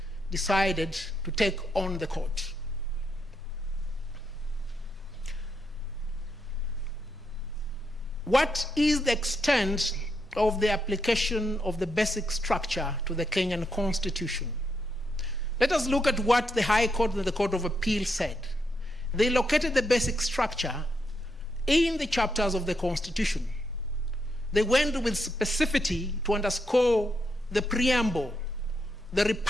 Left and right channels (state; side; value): normal; both; correlation 0.80